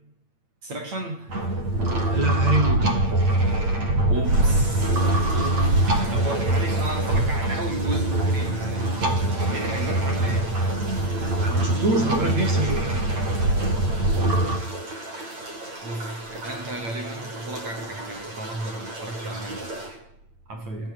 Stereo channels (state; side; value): late; left; 8.9 ms